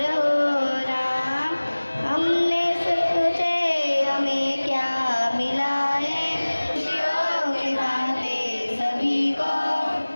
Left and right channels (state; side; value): inverted; both; correlation -1.00